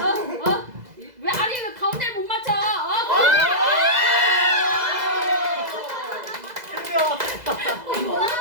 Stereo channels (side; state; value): left; late; 2.0 ms